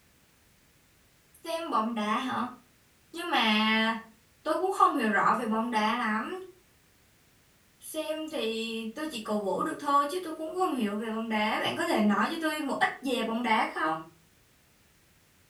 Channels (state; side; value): identical; both; correlation 1.00